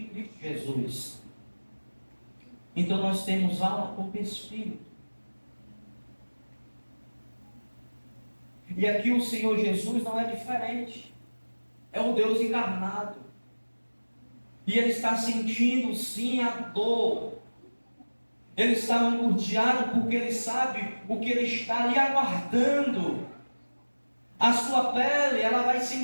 Cristo Jesus. Então nós temos alma, corpo e espírito. E aqui o Senhor Jesus não é diferente. É o Deus encarnado. E Ele está sentindo sim a dor. Ele está angustiado porque Ele sabe o que Ele está ali aguardando. A sua pele, ela vai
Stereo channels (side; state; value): both; inverted; correlation -1.00